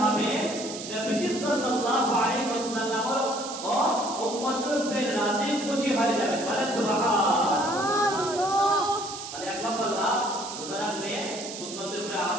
হবে, নবী সাল্লাল্লাহু আলাইহি ওয়াসাল্লাম ও উম্মতের উপরে রাজি খুশি হয়ে যাবে। বলেন সুবহানাল্লাহ। তাহলে এক নম্বর লাভ, রোজা রাখলে সুন্নতের উপরে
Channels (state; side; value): noise; right; hiss, 9 dB below the sound